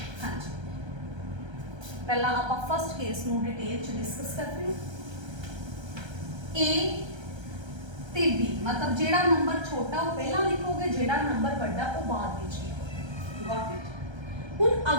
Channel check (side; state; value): left; late; 1.3 ms